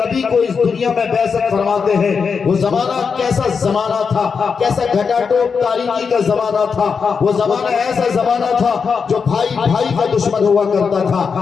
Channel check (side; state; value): right; quieter; 5.7 dB